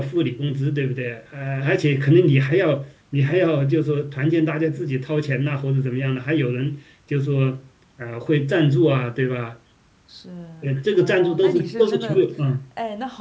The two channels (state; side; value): identical; both; correlation 1.00